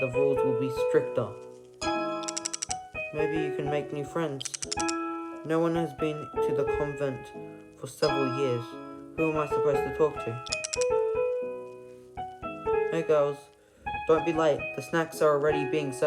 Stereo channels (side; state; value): both; identical; correlation 1.00